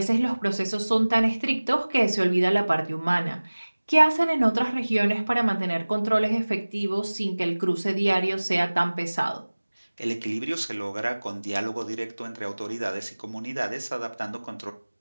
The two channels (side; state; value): both; inverted; correlation -1.00